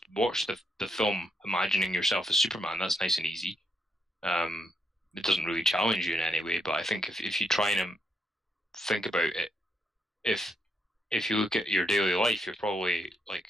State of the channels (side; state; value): both; normal; correlation 0.76